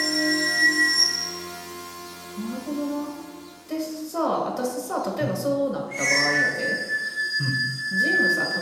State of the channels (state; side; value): identical; both; correlation 1.00